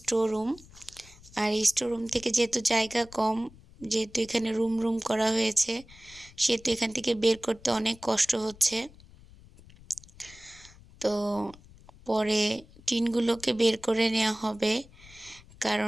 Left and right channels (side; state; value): left; noise; rumble, 23 dB below the sound